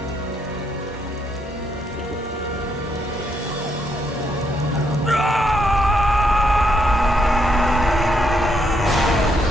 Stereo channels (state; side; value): normal; both; correlation 0.75